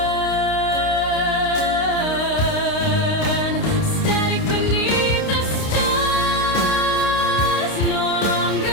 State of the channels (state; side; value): late; right; 29 ms